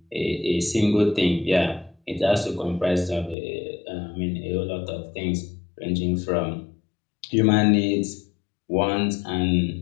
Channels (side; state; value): right; drops out; at 3.4 s